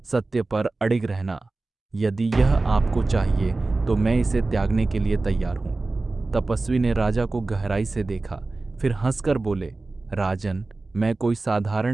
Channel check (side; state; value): left; quieter; 3.3 dB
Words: सत्य पर अडिग रहना। यदि यह आपको चाहिए तो मैं इसे त्यागने के लिए तैयार हूँ। तपस्वी ने राजा को गहराई से देखा, फिर हंसकर बोले, राजन, मैं कोई